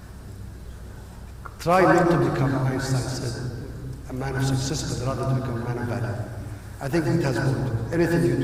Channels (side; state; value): both; identical; correlation 1.00